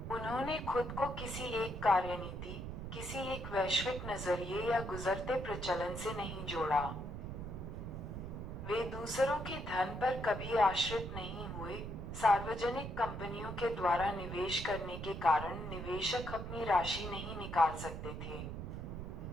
उन्होंने खुद को किसी एक कार्यनीति, किसी एक वैश्विक नजरिए या गुजरते प्रचलन से नहीं जोड़ा। वे दूसरों के धन पर कभी आश्रित नहीं हुए। सार्वजनिक कंपनियों के द्वारा निवेश करने के कारण निवेशक अपनी राशि नहीं निकाल सकते थे।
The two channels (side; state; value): right; noise; rumble, 7 dB below the sound